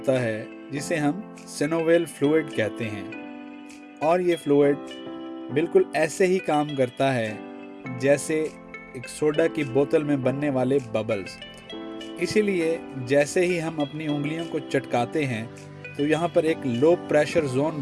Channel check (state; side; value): identical; both; correlation 1.00